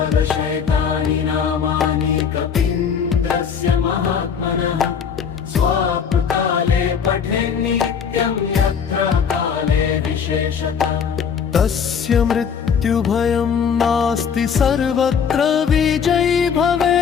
नामानि कपीन्द्रस्य महात्मनः स्वापकाले पठेन्नित्यं यत्र काले विशेषतः तस्य मृत्युभयं नास्ति सर्वत्र विजयी भवेत्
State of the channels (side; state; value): right; quieter; 7.0 dB